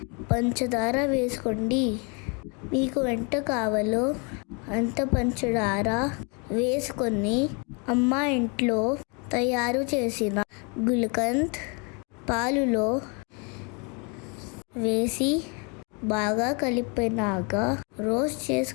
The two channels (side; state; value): right; quieter; 33.4 dB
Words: పంచదార వేసుకోండి. మీకు ఎంత కావాలో అంత పంచదార వేసుకొని అమ్మ ఇంట్లో తయారు చేసిన గుల్కంద్ పాలులో వేసి బాగా కలిపినాక రోస్ట్